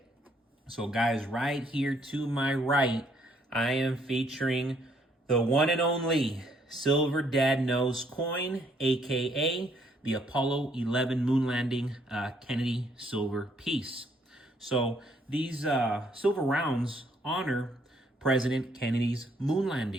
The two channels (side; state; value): both; normal; correlation 0.68